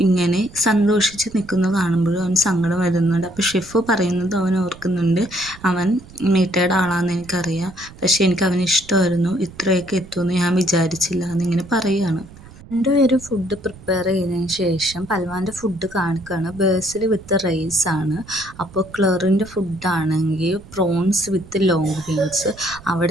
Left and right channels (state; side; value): noise; right; rumble, 20 dB below the sound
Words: ഇങ്ങനെ സന്തോഷിച്ച് നിൽക്കുന്നത് കാണുമ്പോഴും അവന് സങ്കടം വരുന്നുണ്ട്. അപ്പോൾ ഷെഫ് പറയുന്നത് അവൻ ഓർക്കുന്നുണ്ട്, അവൻ മീറ്റയുടെ ആളാണെന്ന് എനിക്കറിയാം, പക്ഷേ എനിക്ക് അവന് ഇഷ്ടമായിരുന്നു, ഇത്രയൊക്കെ എത്തുമെന്ന് ഞാൻ വിചാരിച്ചില്ല എന്നിങ്ങനെ പറയുകയാണ്. രണ്ടുപേരും ഫുഡ് പ്രിപ്പയർ ചെയ്തതിന് ശേഷം പൽവാൻ്റെ ഫുഡ് കാണിക്കുകയാണ്, ബേസിൽ വിത്ത് റൈസാണ്. അപ്പോൾ ക്ലറിൻ്റെ ഫുഡാണെങ്കിൽ പ്രോൺസ് വിത്ത് ലോങ് ബീൻസ്,